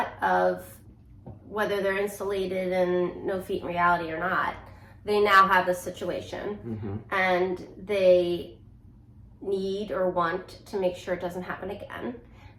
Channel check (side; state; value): both; identical; correlation 1.00